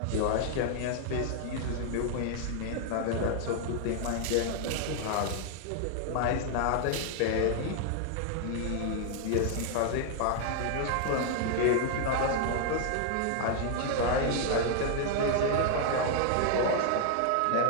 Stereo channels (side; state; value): both; different; correlation 0.00